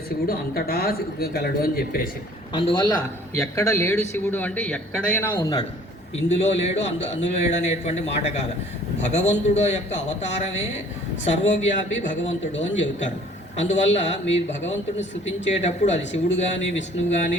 శివుడు అంతటా గలడు అని చెప్పేసి. అందువల్ల ఎక్కడ లేడు శివుడు అంటే ఎక్కడైనా ఉన్నాడు, ఇందులో లేడు అందులో లేడు అనేటువంటి మాట కాదు. భగవంతుడు యొక్క అవతారమే సర్వవ్యాపి భగవంతుడు అని చెబుతారు. అందువల్ల మీరు భగవంతుడిని స్తుతించేటప్పుడు అది శివుడు కానీ విష్ణువు కానీ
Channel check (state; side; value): normal; both; correlation 0.54